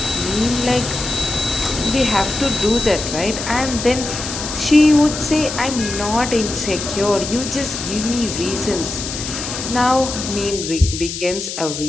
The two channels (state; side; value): noise; left; hiss, 6 dB below the sound